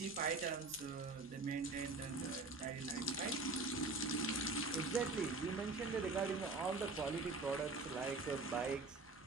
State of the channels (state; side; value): quieter; left; 3.4 dB